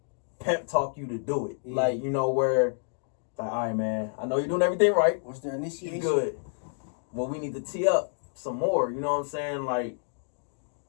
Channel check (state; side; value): silent; right; 59 dB below the other